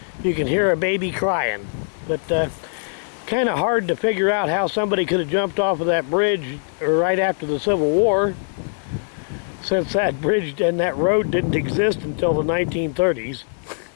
you can hear a baby crying. But kind of hard to figure out how somebody could have jumped off of that bridge right after the Civil War, since that bridge and that road didn't exist until the 1930s.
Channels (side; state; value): right; silent; digital silence